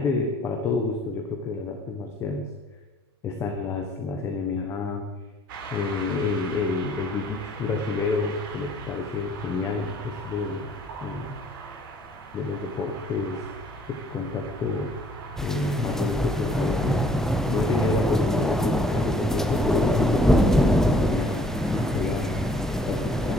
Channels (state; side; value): normal; both; correlation 0.60